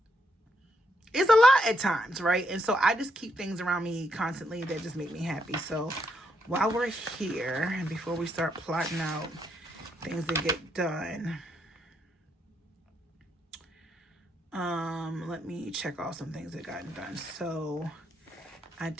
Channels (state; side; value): normal; both; correlation 0.78